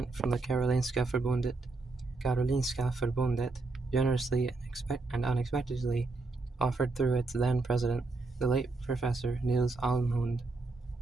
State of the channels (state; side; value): quieter; left; 3.5 dB